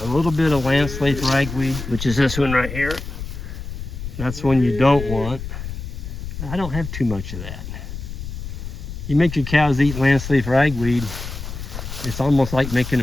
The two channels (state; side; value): noise; left; rumble, 8 dB below the sound